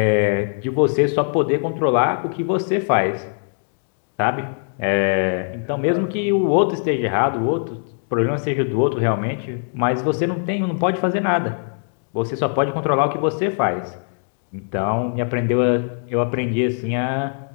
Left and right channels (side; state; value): right; silent; digital silence